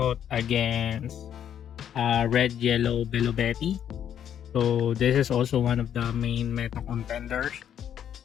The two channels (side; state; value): right; quieter; 9.5 dB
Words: against Red Yellow Belobetti. So this is also one of the main meta contenders